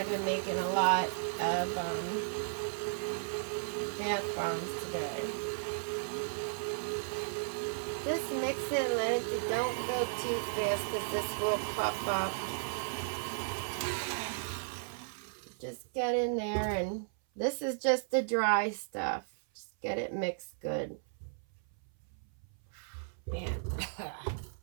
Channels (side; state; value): left; silent; 54 dB below the other